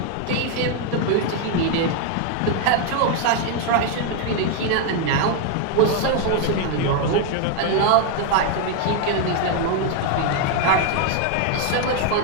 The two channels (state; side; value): different; both; correlation 0.01